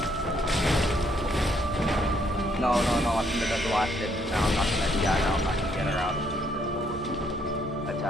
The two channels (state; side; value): normal; both; correlation 0.70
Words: No, I think that's the last hit. Now I'm not gonna, yeah, no, I'm not gonna get her out of the